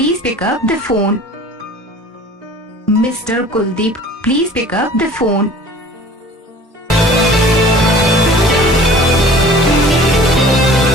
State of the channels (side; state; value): both; normal; correlation 0.46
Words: pick up the phone. Mr. Kuldeep, please pick up the phone.